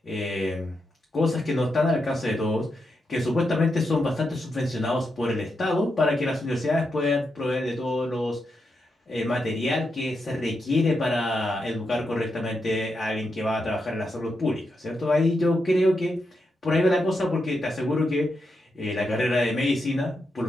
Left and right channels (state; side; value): normal; both; correlation 0.85